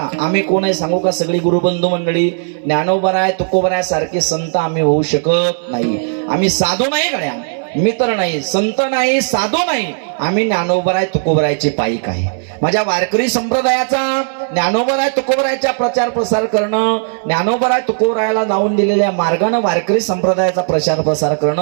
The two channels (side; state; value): left; silent; digital silence